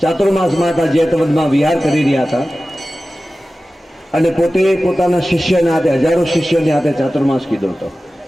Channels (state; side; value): normal; both; correlation 0.95